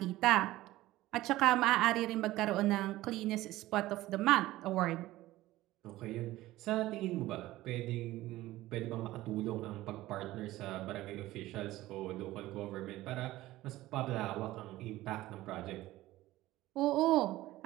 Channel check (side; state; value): left; quieter; 16.7 dB